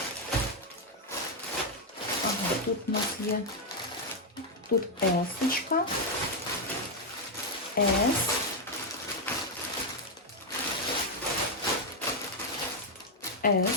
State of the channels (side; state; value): both; normal; correlation 0.01